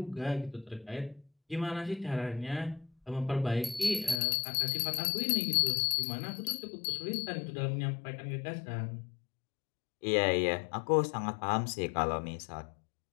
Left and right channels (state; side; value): drops out; right; at 4.2 s